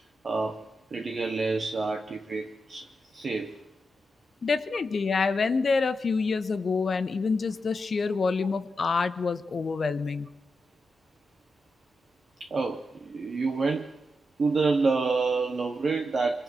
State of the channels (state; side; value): normal; both; correlation 0.87